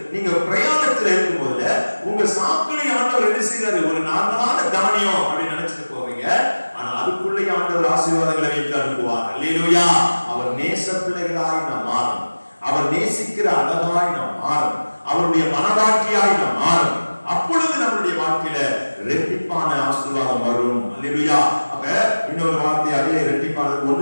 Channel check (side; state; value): both; inverted; correlation -1.00